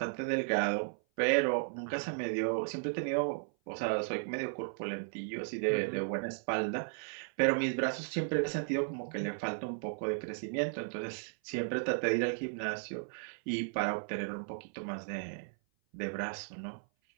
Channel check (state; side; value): silent; left; 54 dB below the other